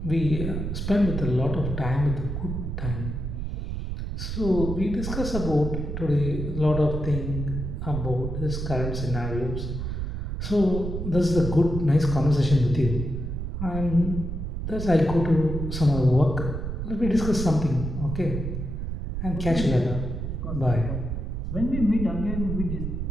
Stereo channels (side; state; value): right; noise; rumble, 4 dB below the sound